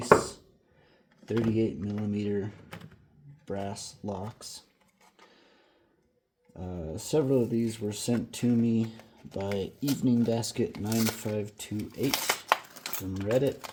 38mm brass locks. Several of these were sent to me by Evening Basket 9528 from Reddit,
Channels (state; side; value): identical; both; correlation 1.00